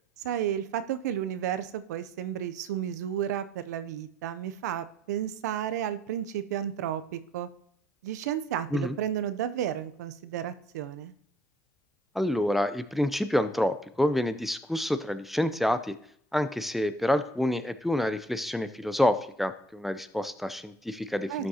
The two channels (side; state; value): both; normal; correlation 0.60